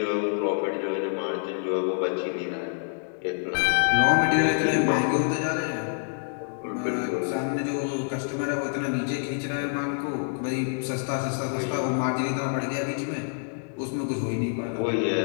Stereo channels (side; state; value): right; silent; 60 dB below the other